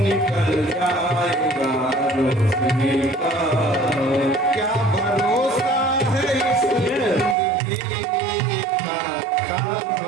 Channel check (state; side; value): drops out; left; at 7.4 s